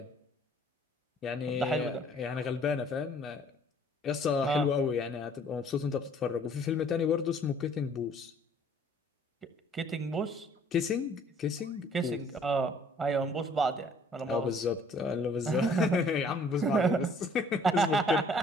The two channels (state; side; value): normal; both; correlation 0.57